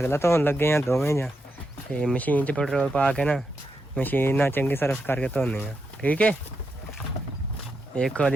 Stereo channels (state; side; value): normal; both; correlation 0.84